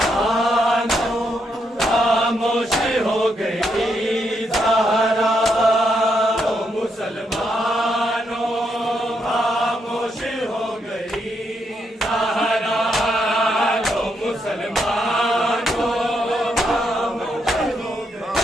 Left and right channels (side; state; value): both; normal; correlation 0.79